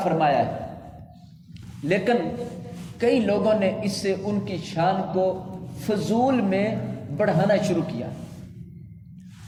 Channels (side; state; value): both; identical; correlation 1.00